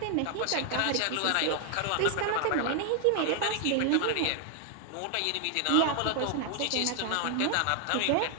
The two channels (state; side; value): different; both; correlation 0.00